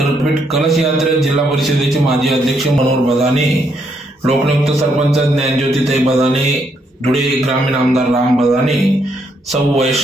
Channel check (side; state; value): both; normal; correlation 0.75